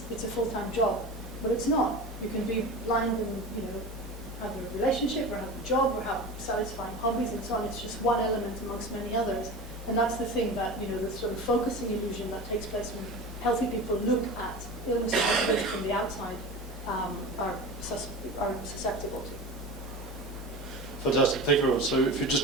it's a full-time job. But it's not. You can be blind and have a relationship or have a job or have satisfying hobbies and so on. It's just one element amongst many others. And that's the thing that, the sort of focusing illusion that takes place when healthy people look at illness from the outside are susceptible to. Fantastic, thank you very much. So if you just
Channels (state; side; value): normal; both; correlation 0.31